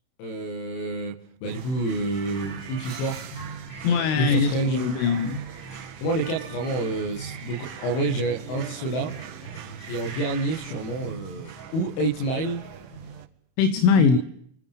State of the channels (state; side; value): late; right; 31 ms